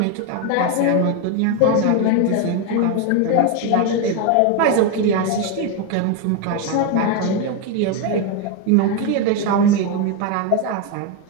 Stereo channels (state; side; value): different; both; correlation 0.02